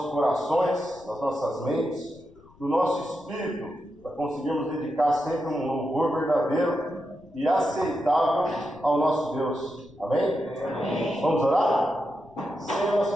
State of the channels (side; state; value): left; noise; rumble, 27 dB below the sound